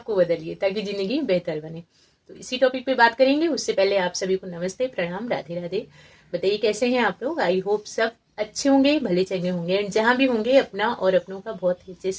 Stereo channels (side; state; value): both; identical; correlation 1.00